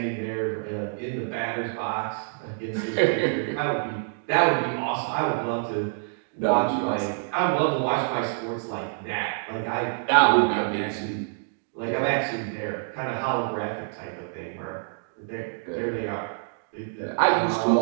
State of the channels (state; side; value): silent; left; digital silence